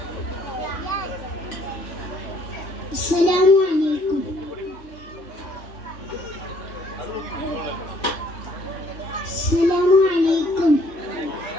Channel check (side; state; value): right; late; 3.2 ms